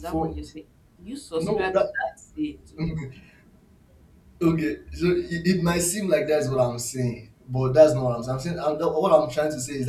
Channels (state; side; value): identical; both; correlation 1.00